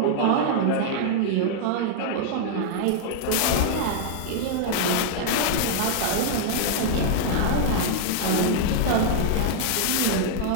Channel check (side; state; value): both; different; correlation -0.01